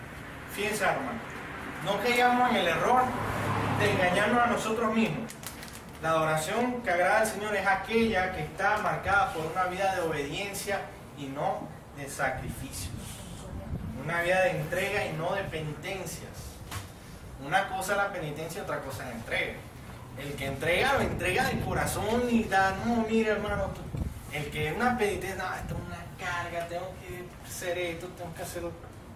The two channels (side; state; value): both; identical; correlation 1.00